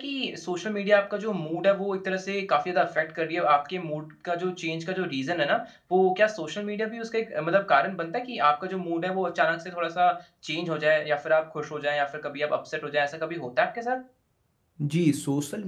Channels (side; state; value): both; identical; correlation 1.00